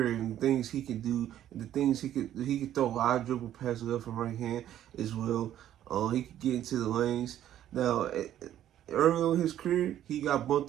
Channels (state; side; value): quieter; left; 11.7 dB